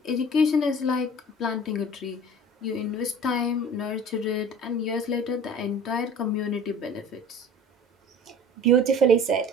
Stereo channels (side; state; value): both; normal; correlation 0.43